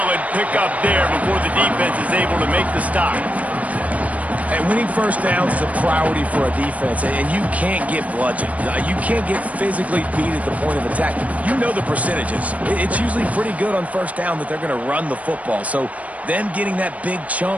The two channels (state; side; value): late; left; 0.068 ms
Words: pickup there before the defense is able to make the stop. And winning first downs is a priority for a defense, and you can't get bludgeoned. You can't get physically beat at the point of attack. You know the percentages. It's usually pretty good on first down that they're going to run the football. So them getting that big